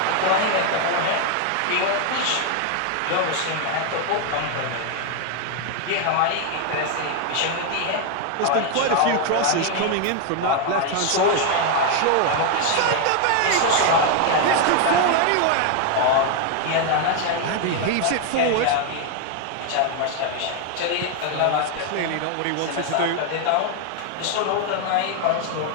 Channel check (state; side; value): different; both; correlation 0.01